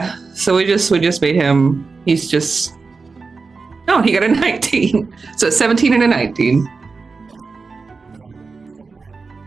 So we just made him. He's just. Oh, he got a 19. So 17 and a 19. Okay. So Rip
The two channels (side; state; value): left; quieter; 4.4 dB